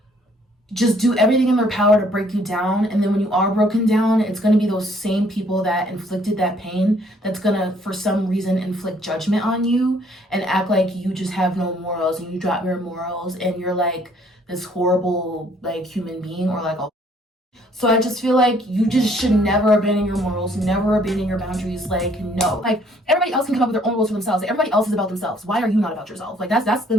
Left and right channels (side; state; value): both; normal; correlation 0.62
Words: just do everything in their power to break you down. And then when you are broken down, it's going to be those same people that inflicted that pain that's going to, for some reason, inflict judgment on you and act like you just have no morals and you drop your morals and you're like this horrible like human being or like a. So I just feel like you just should never abandon your morals, never abandon your boundaries. Like, no. Like, everybody else can come up with their own rules for themselves. Like, everybody else is about themselves. Why are you not about yourself? Like, that's the